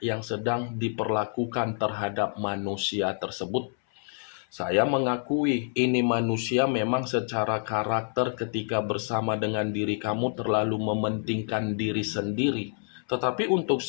yang sedang diperlakukan terhadap manusia tersebut. Saya mengakui ini manusia memang secara karakter ketika bersama dengan diri kamu terlalu mementingkan diri sendiri. Tetapi untuk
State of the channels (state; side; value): silent; right; 60 dB below the other